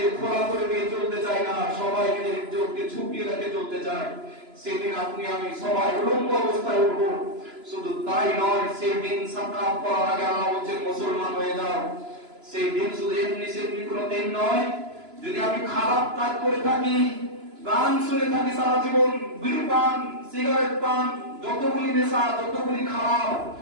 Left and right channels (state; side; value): late; left; 3.0 ms